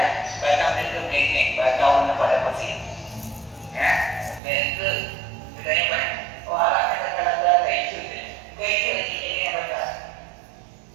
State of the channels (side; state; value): left; drops out; at 4.4 s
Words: batang itu begini, batang pada pasir. Ya, dan itu bedanya banyak. Alatnya kalasan itu. Itu ini yang betul.